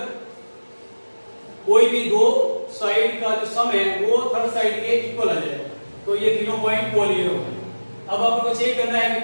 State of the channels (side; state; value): both; inverted; correlation -1.00